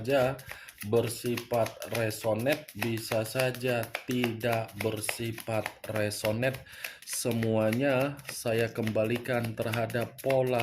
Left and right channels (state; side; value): identical; both; correlation 1.00